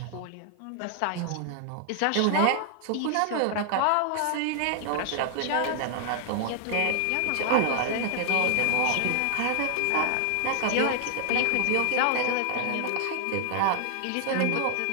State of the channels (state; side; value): different; both; correlation 0.00